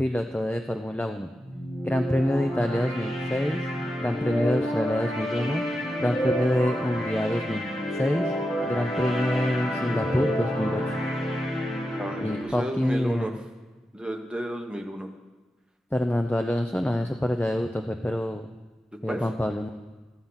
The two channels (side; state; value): both; normal; correlation 0.90